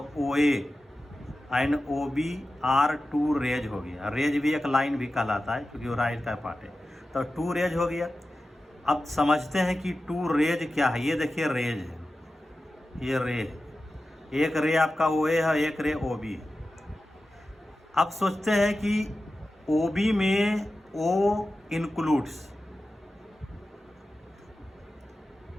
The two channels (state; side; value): normal; both; correlation 0.93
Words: O A and O B are 2 rays हो गया। रेज भी एक लाइन भी कहलाता है क्योंकि वो राइट का पार्ट है, तो 2 रेज हो गया। अब समझते हैं कि 2 रेज क्या है। ये देखिए रेज है, ये रेज, एक रे आपका ओ ए है, एक रे ओ बी है। अब सोचते हैं कि ओ बी में ओ इंक्लूड्स